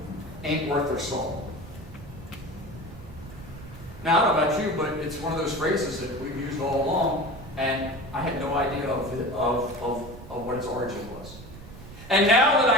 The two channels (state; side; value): noise; right; rumble, 15 dB below the sound